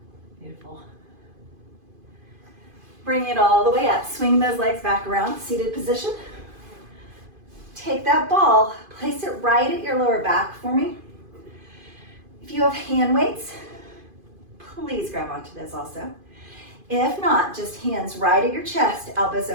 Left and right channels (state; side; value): late; left; 2.5 ms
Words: Beautiful. Bring it all the way up. Swing those legs back around, seated position. Take that ball, place it right at your lower back for me. If you have hand weights, please grab onto this also. If not, just hands right at your chest, elbows